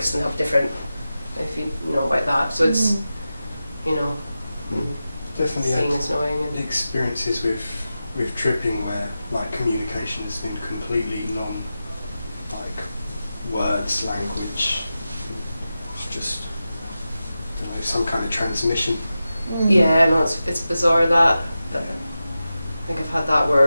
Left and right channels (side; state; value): both; inverted; correlation -0.93